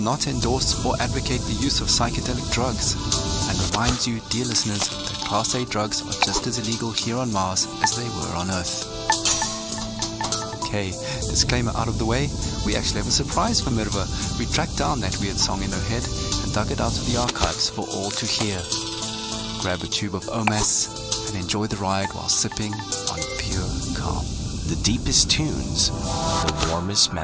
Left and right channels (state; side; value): identical; both; correlation 1.00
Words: not endorse or advocate the use of psychedelic drugs and reminds you, dear listeners, that Class A drugs are just as illegal here on Mars as they were on Earth. Okay, disclaimer out of the way, we actually have a surprise for Mirva. We tracked down that weird song in her head and dug it out of the archives for all to hear. Grab a tube of OMAS and enjoy the ride while sipping on pure calm. The deepest tunes, the warmest